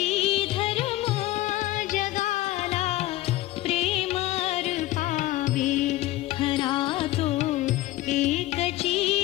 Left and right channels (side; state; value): right; quieter; 16.8 dB